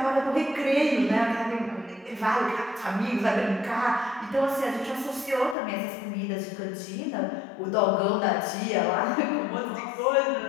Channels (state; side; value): drops out; right; at 5.6 s